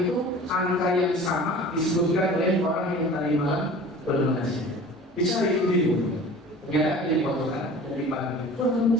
itu angka yang sama disebutkan oleh orang yang tadi malam bernasihat. Bicara itu dulu. Ternyata dia dipotongkan dan dipanggil.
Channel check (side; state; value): both; normal; correlation 0.42